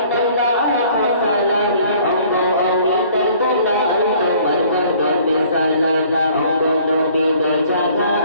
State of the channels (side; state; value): both; inverted; correlation -0.56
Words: সালাম আমগো আমি দরদলা তোমার কদমে সালাম আমগো নবী তো